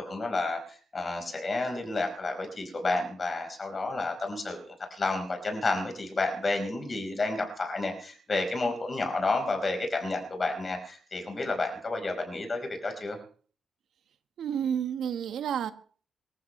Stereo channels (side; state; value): both; normal; correlation 0.87